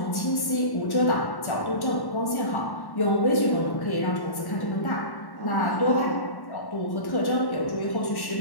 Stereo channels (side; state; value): right; late; 1.1 ms